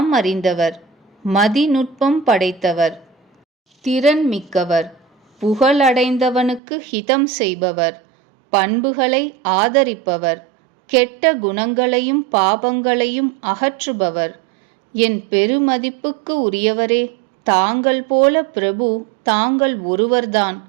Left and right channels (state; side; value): drops out; left; at 6.6 s